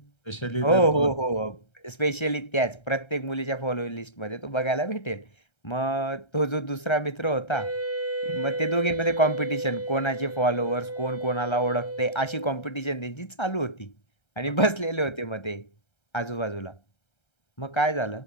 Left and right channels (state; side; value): late; right; 1.3 ms